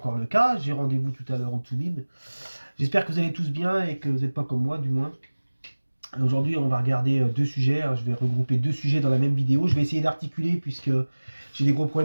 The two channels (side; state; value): both; inverted; correlation -1.00